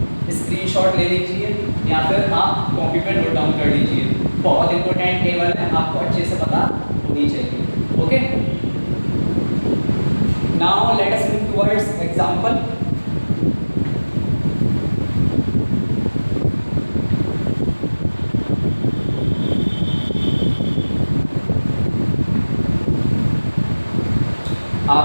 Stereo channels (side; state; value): both; inverted; correlation -1.00